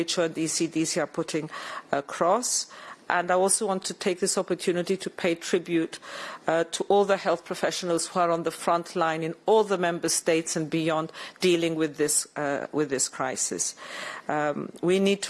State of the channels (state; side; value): identical; both; correlation 1.00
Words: and ECDC are putting across. And I also want to take this opportunity to pay tribute to all the health professionals who are on the front line in all the member states and beyond dealing with this crisis. We need